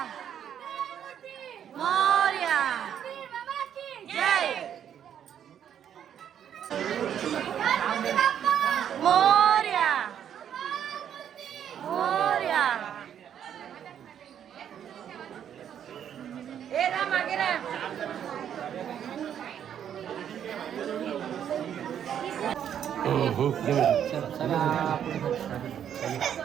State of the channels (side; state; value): left; quieter; 9.3 dB